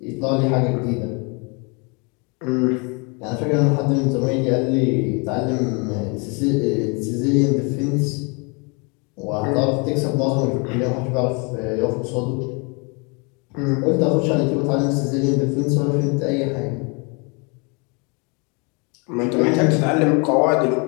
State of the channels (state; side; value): quieter; right; 32.2 dB